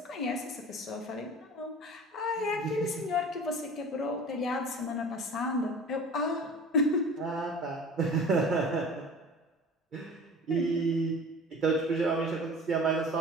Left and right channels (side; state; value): both; normal; correlation 0.41